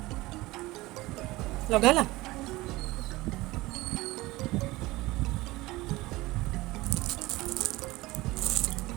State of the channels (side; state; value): left; quieter; 19.8 dB